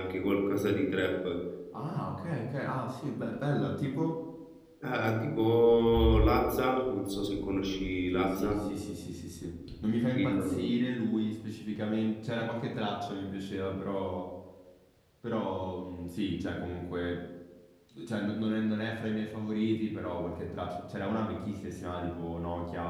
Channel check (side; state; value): both; identical; correlation 1.00